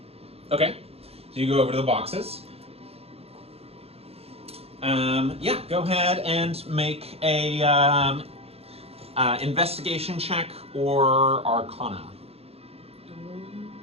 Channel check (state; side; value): late; left; 0.29 ms